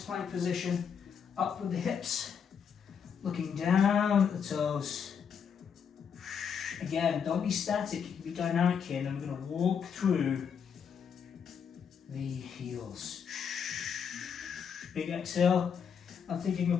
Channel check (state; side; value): quieter; right; 7.1 dB